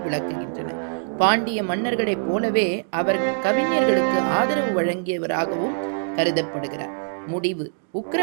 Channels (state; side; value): silent; left; digital silence